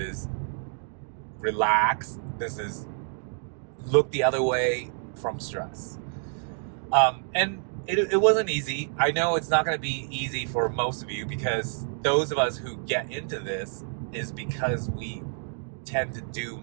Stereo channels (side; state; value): left; silent; 59 dB below the other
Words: relax. This is look the other way from stress. And it wasn't easy. I know it's not going to be easy for most of you, because those of us who get into this is because we tend to do